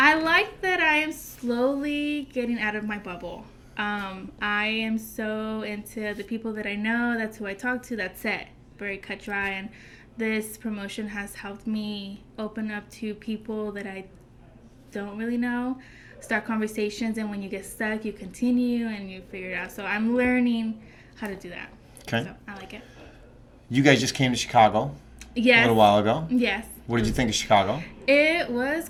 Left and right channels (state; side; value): identical; both; correlation 1.00